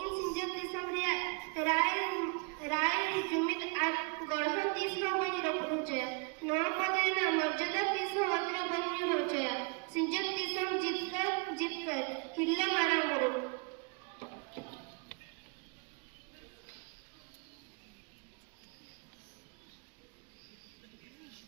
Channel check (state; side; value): quieter; left; 33.7 dB